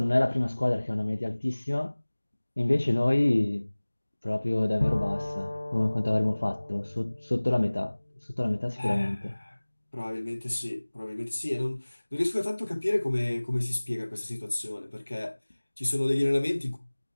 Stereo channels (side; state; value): both; inverted; correlation -1.00